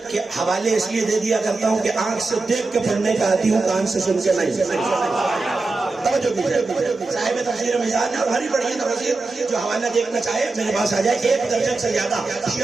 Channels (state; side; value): quieter; left; 3.6 dB